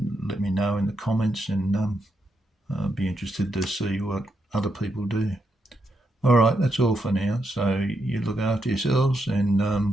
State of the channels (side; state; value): both; normal; correlation 0.81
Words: let me know in the comments, and I'll be interested to see what other people do. All right, that's all for now. So you look after yourselves, and